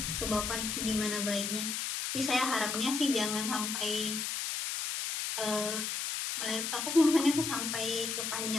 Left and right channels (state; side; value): noise; left; hiss, 2 dB below the sound